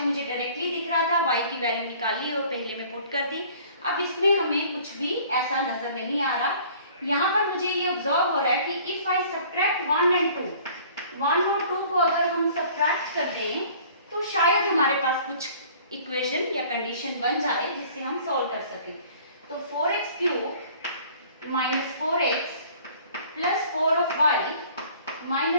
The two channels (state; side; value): inverted; both; correlation -0.51